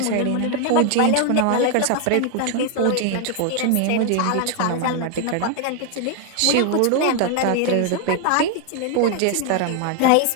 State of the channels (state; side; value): different; both; correlation 0.00